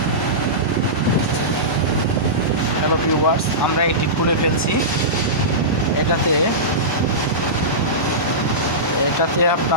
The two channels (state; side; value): normal; both; correlation -0.17